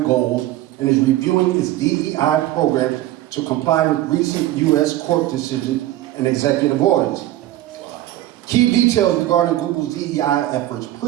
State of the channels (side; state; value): left; quieter; 14.8 dB